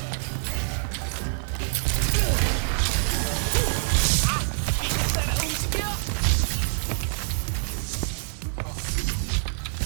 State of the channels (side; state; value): left; silent; 59 dB below the other